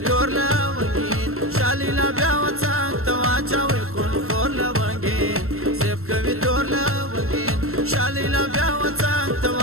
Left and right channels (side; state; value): left; late; 0.62 ms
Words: تور لونګین. شلیلا بیا وطن ته واچوئ خونخور لونګین، زب کوي تور لونګین. شلیلا بیا وطن ته